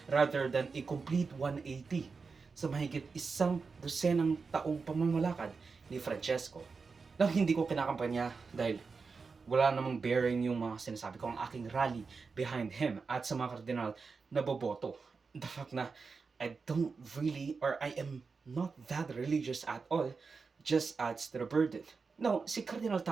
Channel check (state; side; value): quieter; left; 4.8 dB